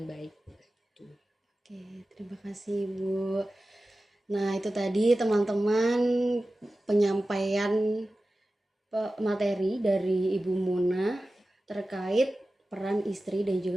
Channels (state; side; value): normal; both; correlation 0.95